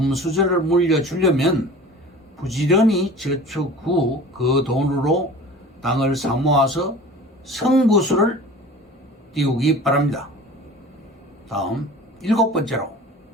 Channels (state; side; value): normal; both; correlation 0.41